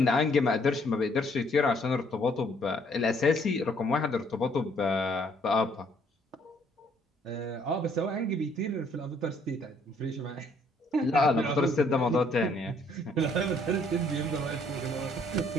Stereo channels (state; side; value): normal; both; correlation 0.65